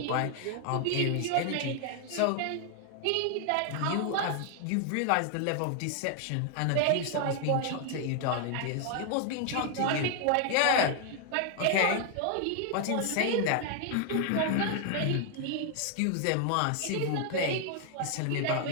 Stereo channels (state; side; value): different; both; correlation 0.00